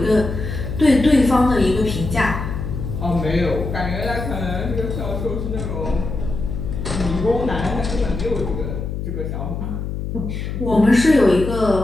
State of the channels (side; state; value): left; noise; hum, 5 dB below the sound